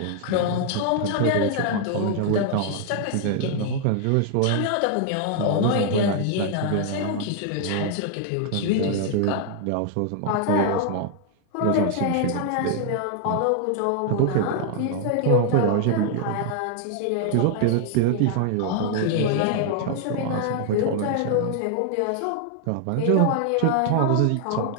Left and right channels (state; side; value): different; both; correlation 0.00